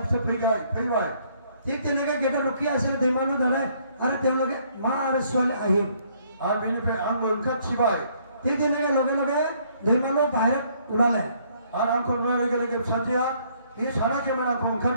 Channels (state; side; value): inverted; both; correlation -0.65